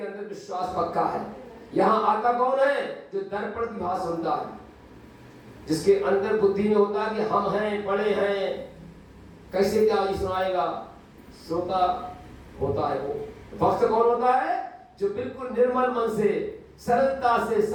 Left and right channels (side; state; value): both; identical; correlation 1.00